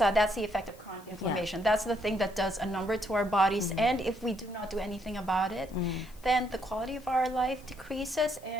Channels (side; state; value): left; noise; hiss, 25 dB below the sound